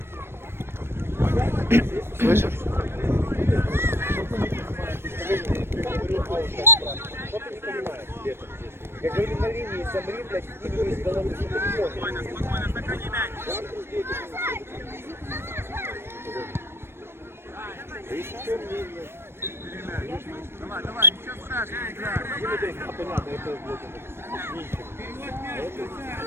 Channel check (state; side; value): late; left; 0.12 ms